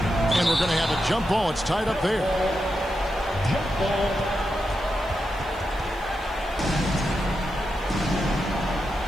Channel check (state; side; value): noise; right; hiss, 26 dB below the sound